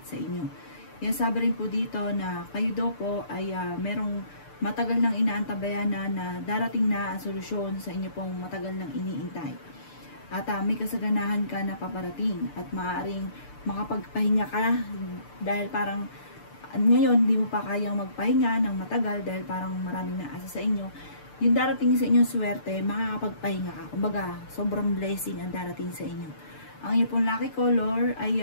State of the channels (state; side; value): late; right; 6.8 ms